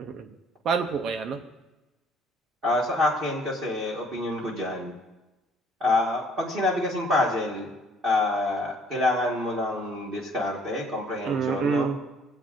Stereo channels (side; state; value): both; normal; correlation 0.59